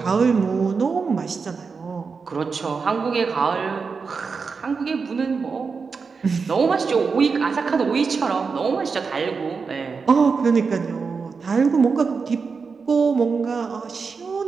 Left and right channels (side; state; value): left; quieter; 5.1 dB